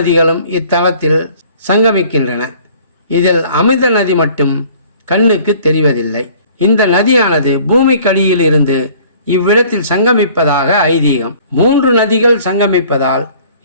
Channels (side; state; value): both; inverted; correlation -0.52